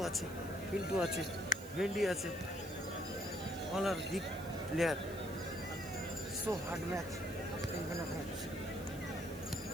আছে পিন্টু আছে ভেন্ডি আছে all are big player so hard match semifinal match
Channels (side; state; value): right; noise; hiss, 17 dB below the sound